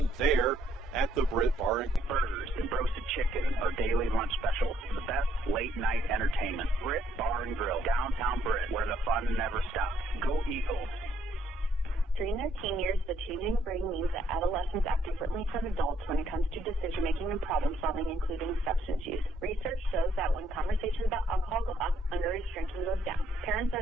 there at the Britt Bar and Grill. Burgers and roasted chicken are daily lunch specials. The best late-night entertainment. Britt Bar and Grill, downtown Britt, where the fun never stops. Go Eagles. During their teen years, the changing brain means that adolescents act differently from adults when it comes to decision-making and problem-solving, including substance use. Research shows that when conversations about alcohol go up, underage drinking goes down. Parents are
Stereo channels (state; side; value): normal; both; correlation 0.70